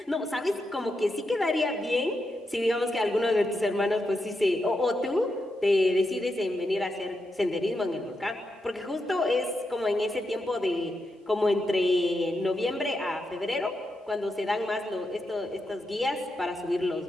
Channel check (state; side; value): normal; both; correlation 0.85